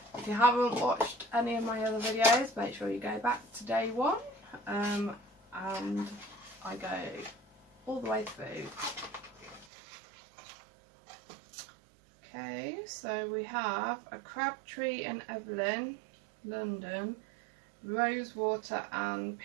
If you haven't watched any of my other videos, make sure you go back to day 1, and I go all the way through. Okay, so we have a Crabtree and Evelyn, London, rose water and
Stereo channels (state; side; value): drops out; left; at 9.7 s